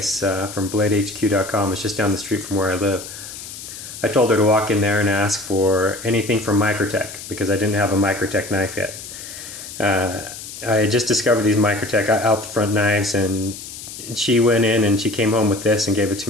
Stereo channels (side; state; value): left; noise; hiss, 12 dB below the sound